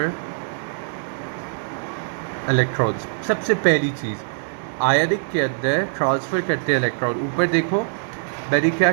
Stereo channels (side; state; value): left; silent; digital silence